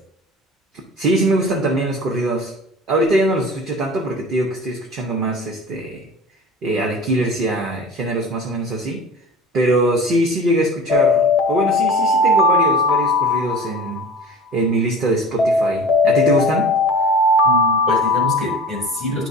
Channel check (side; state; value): both; normal; correlation 0.39